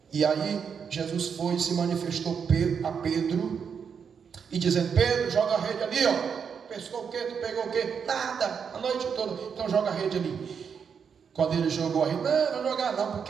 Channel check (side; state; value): left; quieter; 6.7 dB